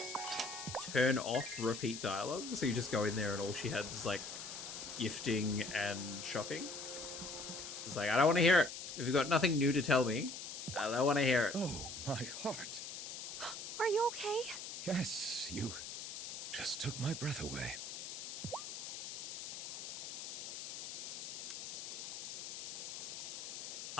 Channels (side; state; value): left; noise; hiss, 7 dB below the sound